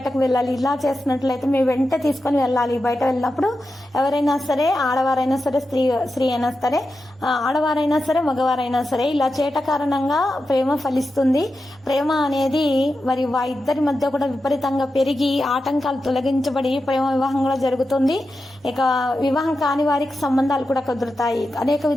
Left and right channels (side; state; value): both; normal; correlation 0.90